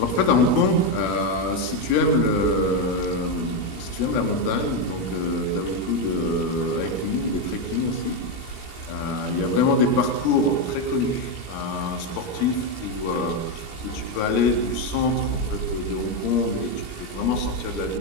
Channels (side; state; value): right; late; 18 ms